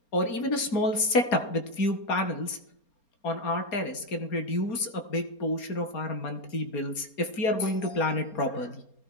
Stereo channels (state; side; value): late; right; 4.3 ms